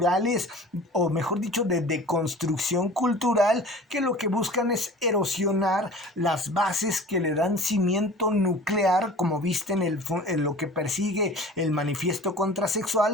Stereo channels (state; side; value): normal; both; correlation 0.42